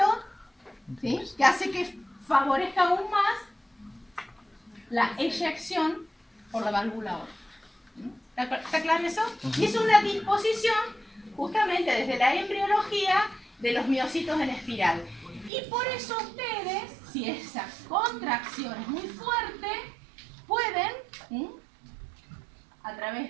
¿sí?, que hace que favorezca aún más la eyección por la válvula aórtica. ¿Está claro eso? Y es una disposición justamente desde la embriología de los miocitos en espiral. Y por eso ustedes, si esa contracción es muy fuerte, pueden, a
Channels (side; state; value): left; drops out; at 15.5 s